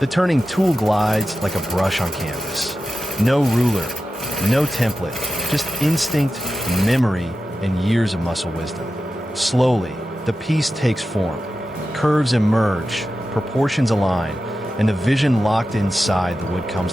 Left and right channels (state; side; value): normal; both; correlation 0.92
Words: The turning tool glides like a brush on canvas. No ruler, no template, just instinct, memory, and years of muscle wisdom. Slowly, the piece takes form. Curves emerge, proportions align, and the vision locked inside the wood comes